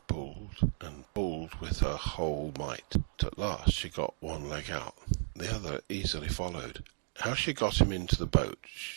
pulled with her whole might. At last she got one leg out. The other easily followed. How she got him into the boat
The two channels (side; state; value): left; silent; digital silence